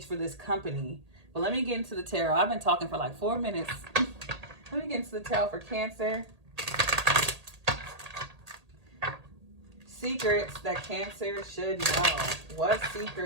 for this company. But let me get into the tarot. I've been talking for like 4 minutes. Let me get into the tarot for Cancer. Secrets that Cancer should know. What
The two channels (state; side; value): late; left; 1.8 ms